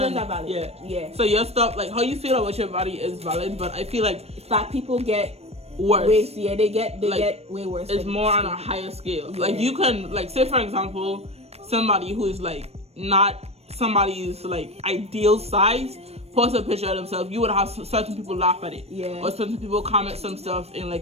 are valid. Yeah. So your stuff, like, how you feel about your body is valid, but I feel like fat people get worse. They get way worse. It's more on a higher scale. Yeah. Like, you can, like, say, for example, somebody who is, like, not somebody's, like, ideal size post a picture of themselves, you would have certain people laugh at it. Yeah. Or certain people comment some stuff in,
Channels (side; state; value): left; late; 0.30 ms